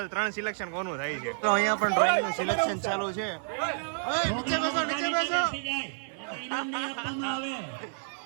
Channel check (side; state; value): left; silent; 58 dB below the other